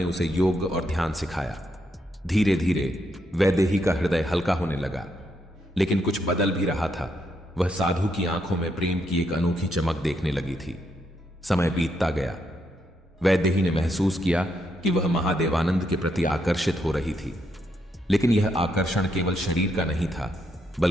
उसे योग और ध्यान सिखाया। धीरे धीरे वैदेही का हृदय हल्का होने लगा, लेकिन कुछ बदल भी रहा था। वह साधु की आंखों में प्रेम की एक अनोखी चमक देखने लगी थी। समय बीतता गया। वैदेही ने महसूस किया कि वह महादेवानंद के प्रति आकर्षित हो रही थी, लेकिन यह आकर्षण केवल शरीर का नहीं था,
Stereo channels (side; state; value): both; normal; correlation 0.78